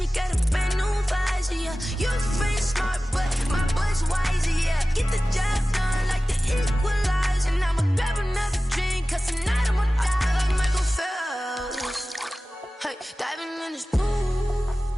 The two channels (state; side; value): normal; both; correlation 0.96